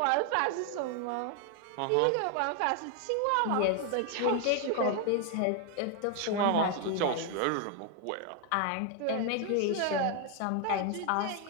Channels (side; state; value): both; different; correlation 0.00